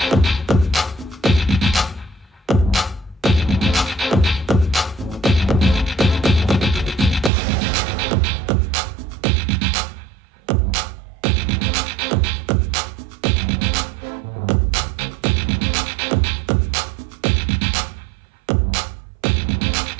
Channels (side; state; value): left; drops out; at 7.3 s